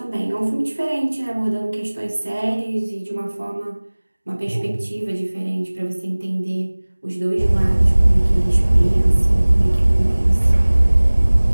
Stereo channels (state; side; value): inverted; both; correlation -1.00